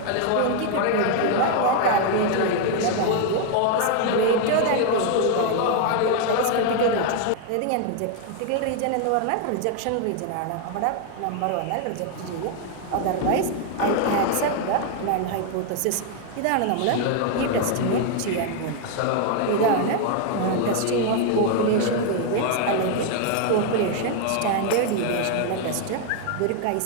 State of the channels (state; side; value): different; both; correlation 0.00